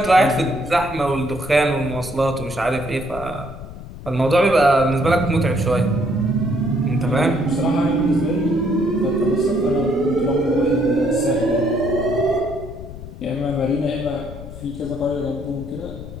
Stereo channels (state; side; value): noise; left; rumble, 13 dB below the sound